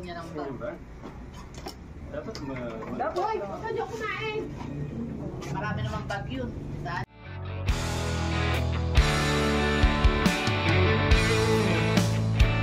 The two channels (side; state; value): both; identical; correlation 1.00